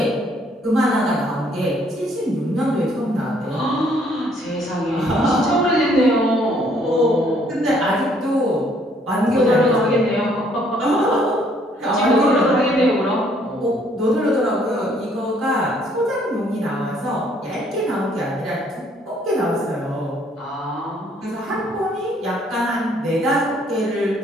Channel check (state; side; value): normal; both; correlation 0.64